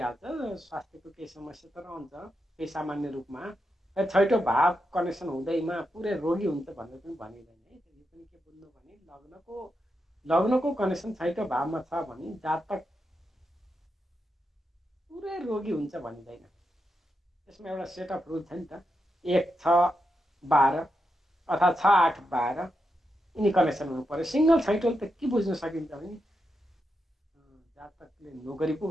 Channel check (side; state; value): both; normal; correlation 0.86